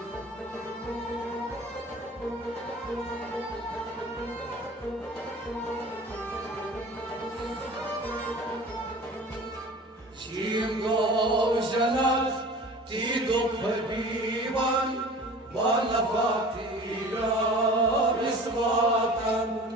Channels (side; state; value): both; normal; correlation 0.42